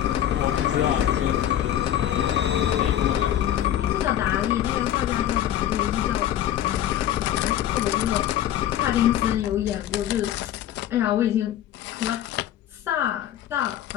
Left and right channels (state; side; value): quieter; right; 11.6 dB